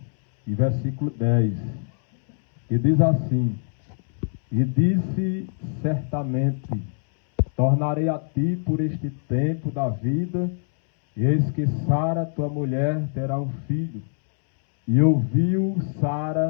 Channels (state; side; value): silent; right; 63 dB below the other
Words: e versículo 10, que diz assim: E disse certamente, tornarei a ti por este tempo da vida, e eis que Sara, tua mulher, terá um filho. E ouviu